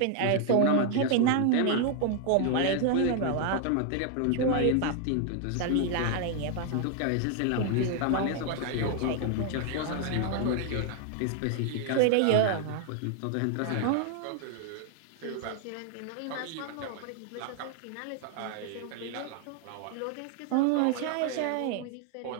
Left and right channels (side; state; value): both; different; correlation 0.00